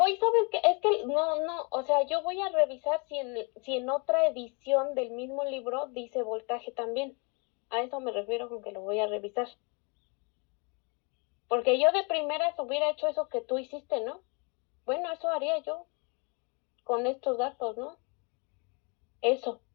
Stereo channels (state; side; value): quieter; right; 33.5 dB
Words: qué? Es que no, o sea, yo voy a revisar si en otra edición del mismo libro dice voltaje también. A eso me refiero con que lo voy a revisar. Porque yo de primeras hubiera hecho eso que tú hiciste, ¿no? Bueno, eso haría yo con estos datos, ¿no? Eso